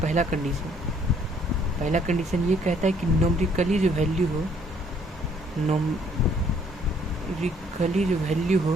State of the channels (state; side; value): normal; both; correlation 0.63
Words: पहला कंडीशन ये कहता है कि नोमरिकली जो वैल्यू हो